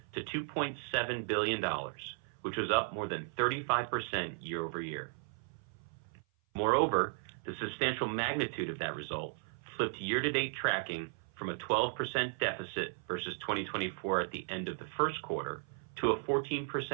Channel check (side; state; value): left; silent; 54 dB below the other